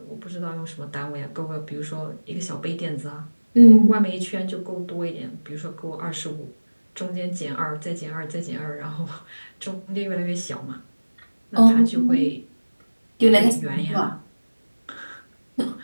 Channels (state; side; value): inverted; both; correlation -1.00